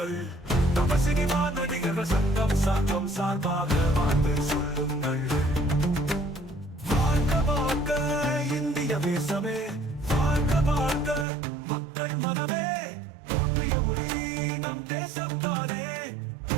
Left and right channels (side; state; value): left; drops out; at 11.2 s